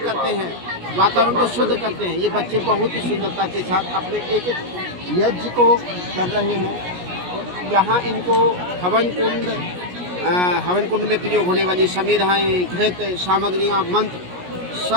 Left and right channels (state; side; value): late; left; 17 ms